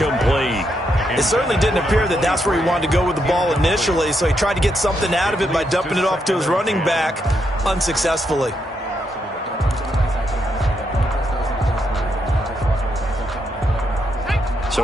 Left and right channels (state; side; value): normal; both; correlation 0.80